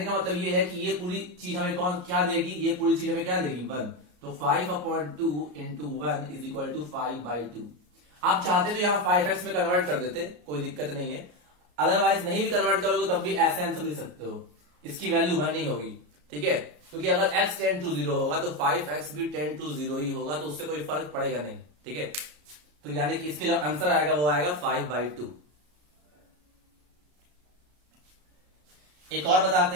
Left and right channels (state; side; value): late; left; 34 ms